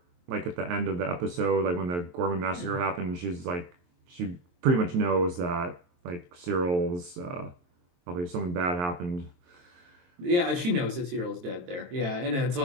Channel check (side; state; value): left; late; 23 ms